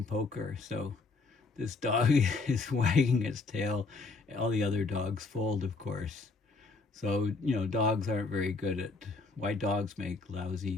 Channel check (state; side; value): quieter; right; 3.9 dB